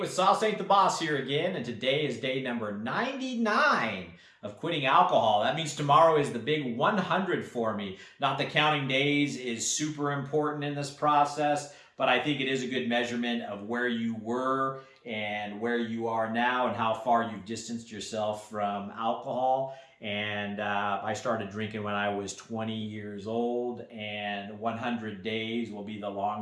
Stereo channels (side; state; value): both; identical; correlation 1.00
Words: Sauce Ain't the Boss here again, and today is day number 99 of quitting alcohol. That means tomorrow is the big 100 for me. Not that counting days is super important in this process, but I think it is a good measurement of where you were and where you are now and how far you've distanced yourself from alcohol. And I started drinking when I was 20 years old, and 100 days will be the